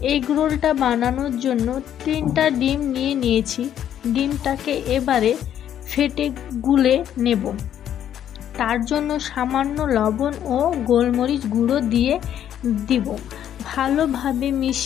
এগ রোলটা বানানোর জন্য 3টা ডিম নিয়েছি। ডিমটাকে এবারে ফেটে গুলে নেব। তার জন্য সামান্য লবণ ও গোলমরিচ গুঁড়ো দিয়ে দিব। ভালোভাবে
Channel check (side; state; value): right; quieter; 10.3 dB